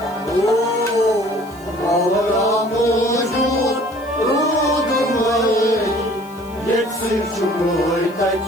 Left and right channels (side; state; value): left; noise; hiss, 24 dB below the sound